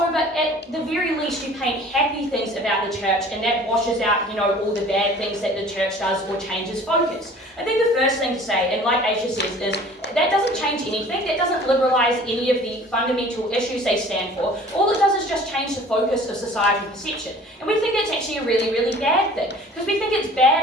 but at the very least you paint happy things about the church, and that washes out, all the bad things that the church does or changes focus. I think the first thing to say, and like Aisha says, is that doesn't change anything. That doesn't liberalise any of the fundamental issues they stand for. All it does is just change the focus of societal perception. And we think that's actually a really, really bad thing. Because we think it's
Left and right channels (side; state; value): both; normal; correlation 0.48